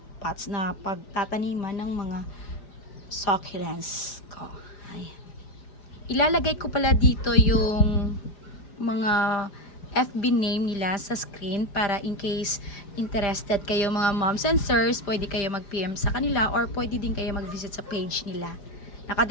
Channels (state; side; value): late; right; 5.0 ms